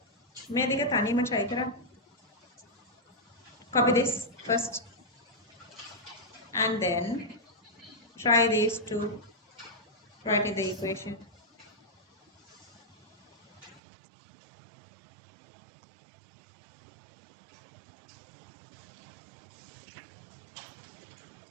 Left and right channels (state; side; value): drops out; left; at 13.8 s